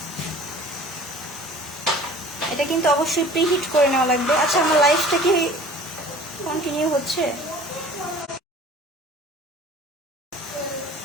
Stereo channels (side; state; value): both; normal; correlation 0.46